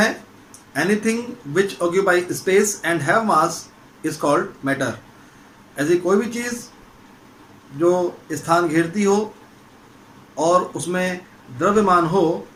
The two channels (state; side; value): identical; both; correlation 1.00